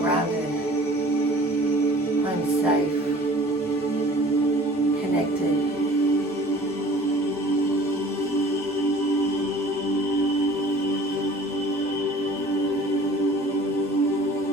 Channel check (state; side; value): normal; both; correlation 0.47